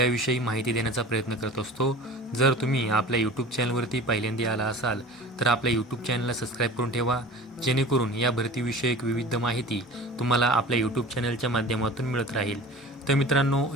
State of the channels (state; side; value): normal; both; correlation 0.39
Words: माहिती देण्याचा प्रयत्न करत असतो. जर तुम्ही आपल्या यूट्यूब चॅनलवरती पहिल्यांदा आला असाल तर आपल्या यूट्यूब चॅनलला सबस्क्राईब करून ठेवा, जेणेकरून या भरतीविषयक विविध माहिती तुम्हाला आपल्या यूट्यूब चॅनलच्या माध्यमातून मिळत राहील. तर मित्रांनो,